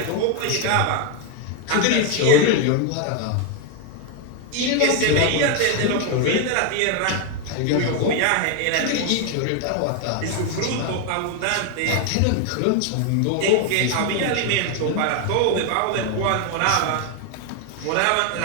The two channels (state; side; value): different; both; correlation 0.01